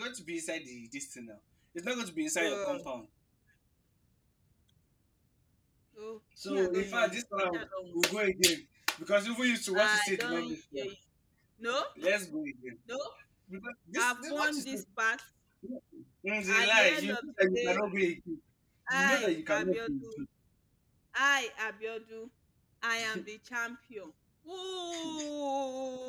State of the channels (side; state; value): both; identical; correlation 1.00